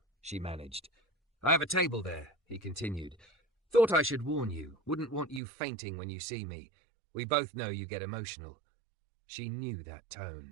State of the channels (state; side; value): drops out; left; at 5.4 s